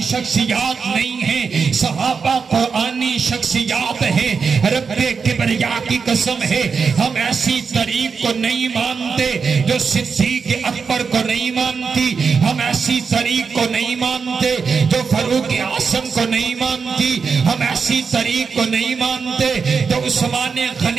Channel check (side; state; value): left; quieter; 5.5 dB